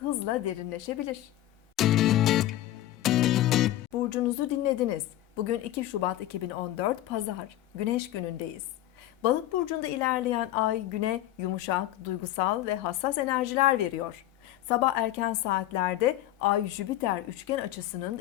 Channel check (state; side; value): quieter; right; 14.2 dB